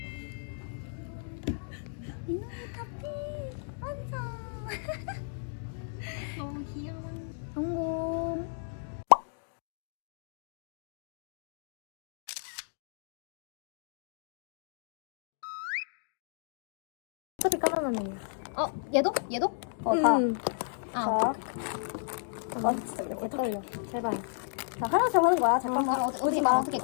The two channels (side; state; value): right; silent; digital silence